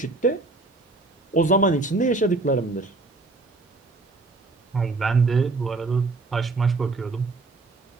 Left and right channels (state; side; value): quieter; left; 3.4 dB